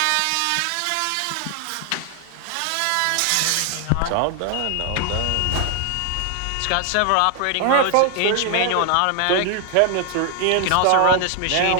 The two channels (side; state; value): both; different; correlation 0.00